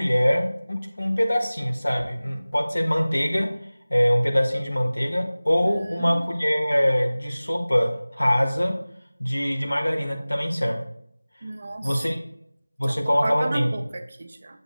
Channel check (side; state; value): both; inverted; correlation -0.99